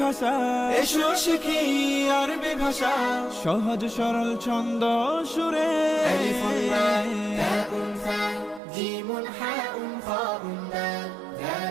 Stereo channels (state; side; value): drops out; left; at 8.6 s